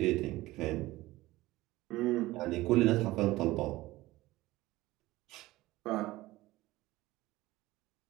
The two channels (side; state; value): left; quieter; 18.2 dB